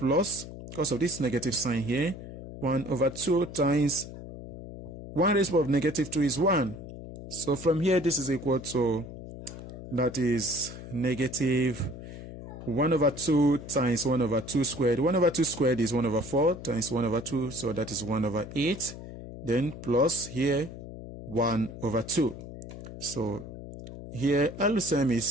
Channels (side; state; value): left; noise; hum, 12 dB below the sound